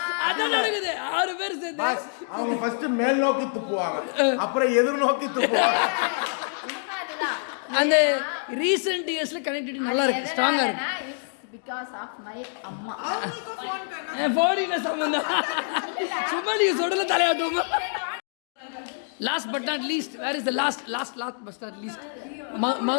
அதான் நடக்குது. 6 பேர் சேர்ந்து அவங்க ஃபர்ஸ்ட் மேல் நோக்கி துப்புவாங்க, அப்புறம் எதிர் நோக்கி துப்புவாங்க. அந்த ரீசெண்ட் இயர்ஸ்ல கனெக்டிவிட்டி நல்லா இருக்கு, ஸ்ட்ராங்கா இருக்கு. because of my அம்மா. ஃபோன் என்ன சம்பந்தம்? சும்மா நீங்க சொல்றல தலையாட்டுமா. Last but not least, where is the last but not least?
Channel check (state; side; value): silent; right; digital silence